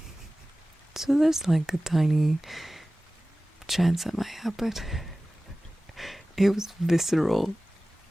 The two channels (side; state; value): both; normal; correlation 0.97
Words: So there's like a tiny chance that might happen. It was visceral.